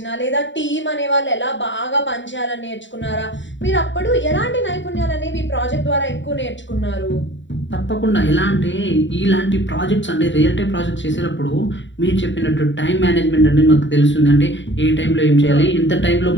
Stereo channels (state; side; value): late; right; 0.54 ms